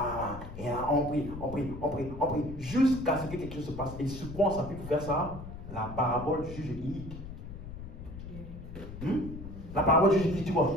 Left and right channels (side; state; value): left; noise; rumble, 11 dB below the sound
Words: on prie, jusqu'à ce que quelque chose se passe. Et sur quoi on s'appuie pour faire ça? La parabole du juge inique. La parabole du juge inique, tu